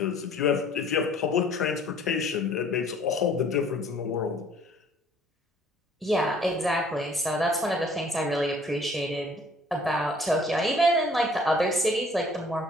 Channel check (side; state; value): both; normal; correlation 0.56